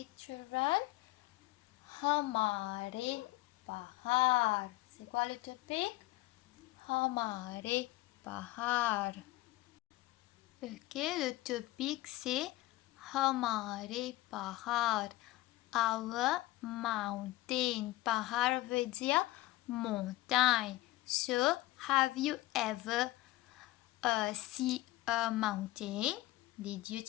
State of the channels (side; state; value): right; quieter; 18.5 dB